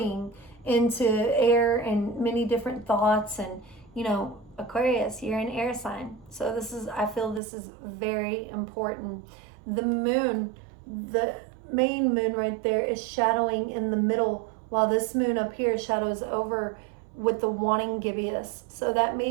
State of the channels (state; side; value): drops out; left; at 7.4 s